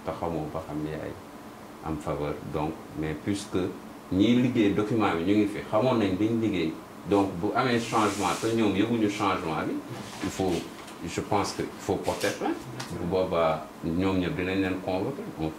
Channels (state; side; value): identical; both; correlation 1.00